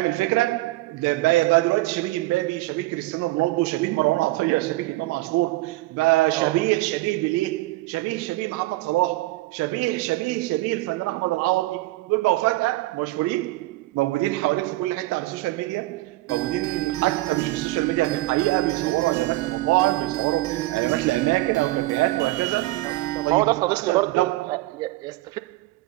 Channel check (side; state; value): left; quieter; 19.1 dB